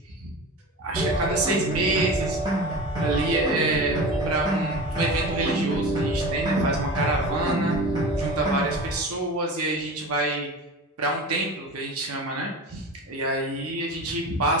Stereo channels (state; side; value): normal; both; correlation 0.32